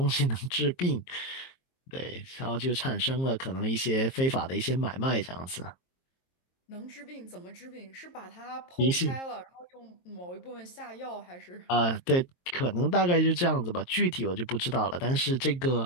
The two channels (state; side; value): late; right; 22 ms